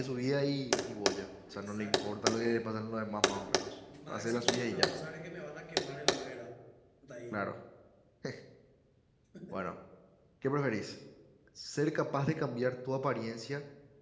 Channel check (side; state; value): both; identical; correlation 1.00